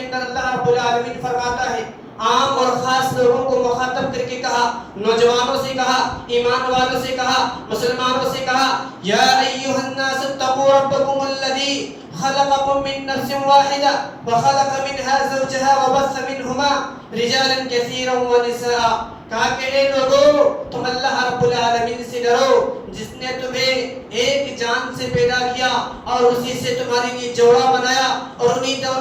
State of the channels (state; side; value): identical; both; correlation 1.00